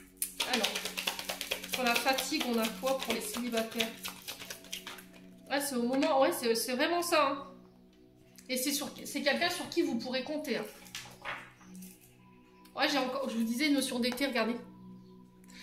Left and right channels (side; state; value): both; identical; correlation 1.00